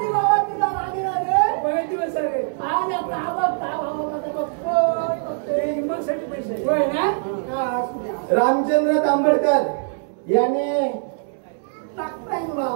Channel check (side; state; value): left; silent; 64 dB below the other